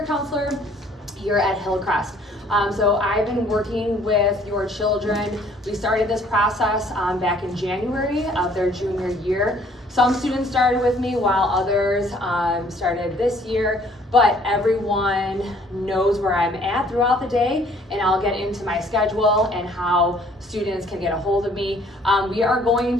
Counselor here at Hillcrest. So I've been working with your children. We started this process back in January of their junior year. Some students started with me while others started this year, but everyone knows where I'm at throughout the day, and I'll get into my schedule and how students can get a hold of me. We are going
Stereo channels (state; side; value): normal; both; correlation 0.59